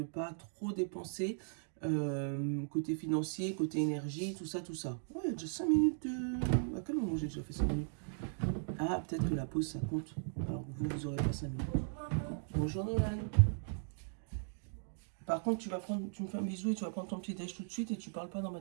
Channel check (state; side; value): silent; left; digital silence